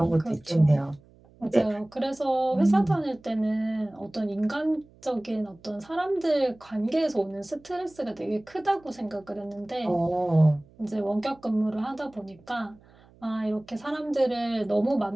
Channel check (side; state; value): right; noise; hum, 27 dB below the sound